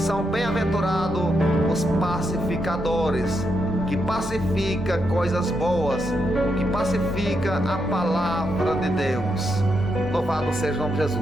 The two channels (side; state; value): both; normal; correlation 0.82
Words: bem-aventurados os pacificadores, que pacifica coisas boas, que pacifica a palavra de Deus. Louvado seja o nome de